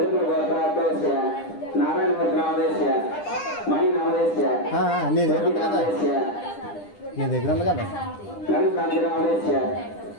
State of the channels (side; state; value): right; late; 9.9 ms